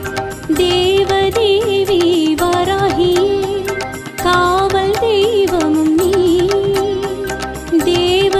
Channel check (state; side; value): identical; both; correlation 1.00